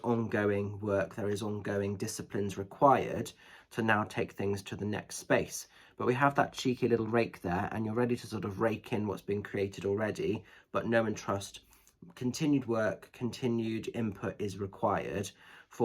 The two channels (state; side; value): identical; both; correlation 1.00